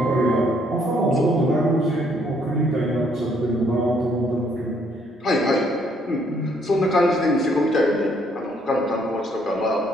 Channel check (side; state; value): both; normal; correlation 0.67